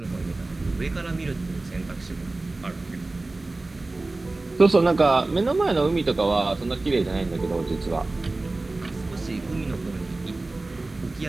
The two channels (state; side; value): quieter; left; 3.1 dB